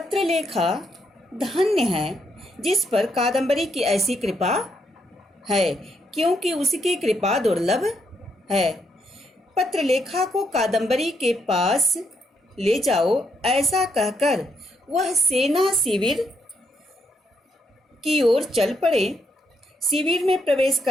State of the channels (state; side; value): normal; both; correlation 0.77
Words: धन्य है जिस पर कादम्बरी की ऐसी कृपा है, क्योंकि उसकी कृपा दुर्लभ है। पत्रलेखा को कादम्बरी के पास ले जाओ, ऐसा कहकर वह सेना शिविर की ओर चल पड़े। शिविर में प्रवेश